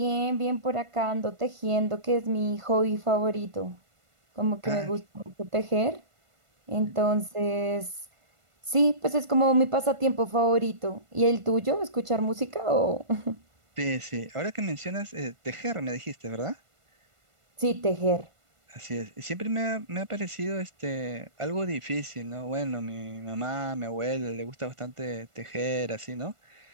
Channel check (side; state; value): left; late; 1.5 ms